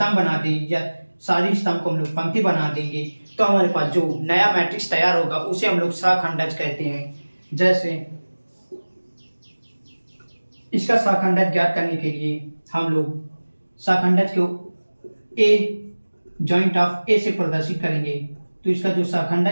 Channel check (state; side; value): inverted; both; correlation -1.00